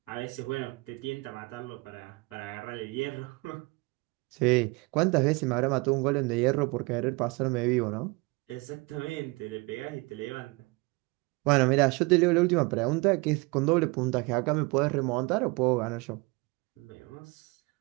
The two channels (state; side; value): quieter; left; 26.3 dB